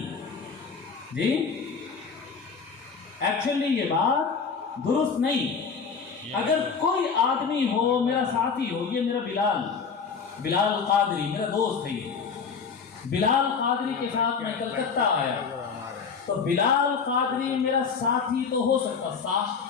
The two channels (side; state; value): right; quieter; 5.7 dB